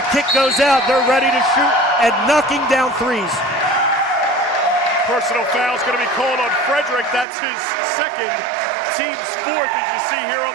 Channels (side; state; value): left; drops out; at 7.2 s